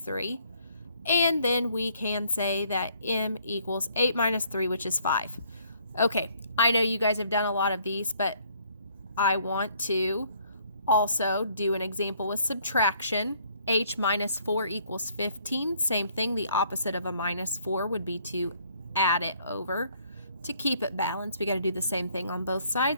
And then we can say that m equals 8 minus 3, which is 5. Okay, I know you guys have done a lot of these, but I want to also do an example with subtraction. H minus 4 equals 15. Same thing, the opposite of a minus 4 would be to add it over. To keep it balanced, we got to do the same thing on both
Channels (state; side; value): inverted; both; correlation -0.64